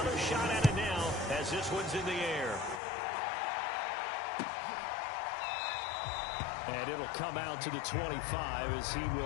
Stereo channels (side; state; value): right; drops out; at 2.8 s